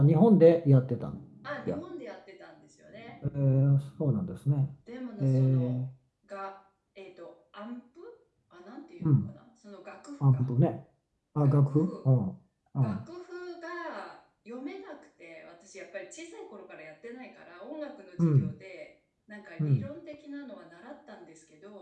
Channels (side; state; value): both; identical; correlation 1.00